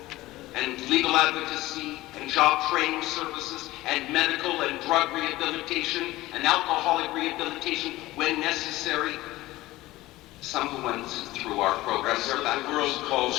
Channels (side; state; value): right; quieter; 17.8 dB